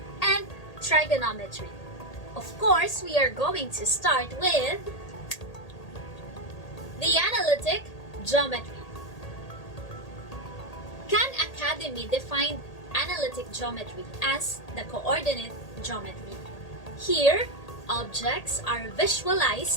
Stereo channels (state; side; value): late; right; 1.8 ms